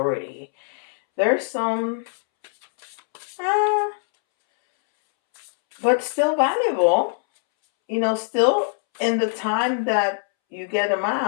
There's some, but still valuable. Still in the time that you get them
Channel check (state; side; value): silent; right; 64 dB below the other